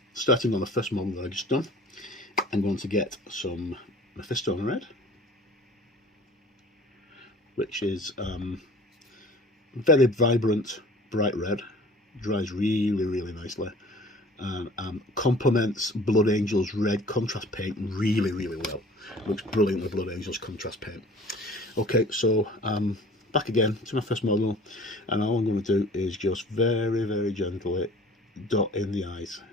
starting on the first model that I just done. I'm going to get some Mephisto red, which is very vibrant, bright red, dries really nicely, and complements Blood Angel's red contrast paint really well. Looks brilliant with Blood Angel's contrast paint. Okay, so back again to my first model, and all I'm going to do is just very gently dot in the eyes,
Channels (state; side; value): normal; both; correlation 0.47